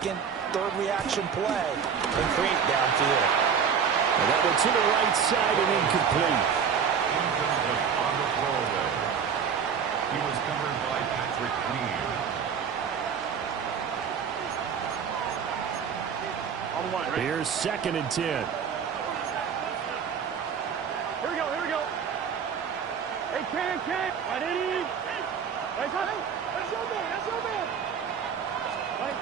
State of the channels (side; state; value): left; quieter; 7.0 dB